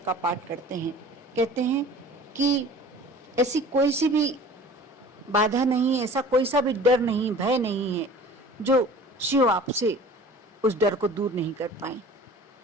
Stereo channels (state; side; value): normal; both; correlation 0.44